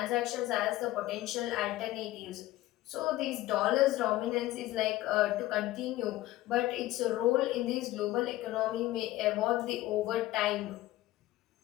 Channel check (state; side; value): quieter; right; 16.4 dB